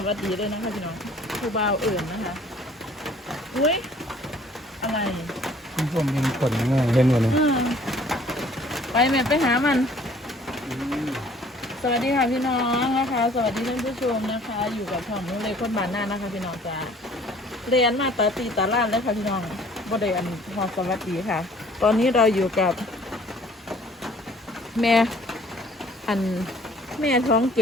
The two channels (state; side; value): normal; both; correlation 0.55